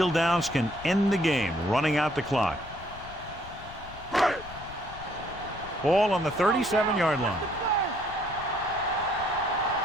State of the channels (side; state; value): left; noise; rumble, 16 dB below the sound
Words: downs can end the game, running out the clock. Ball on the 37-yard line.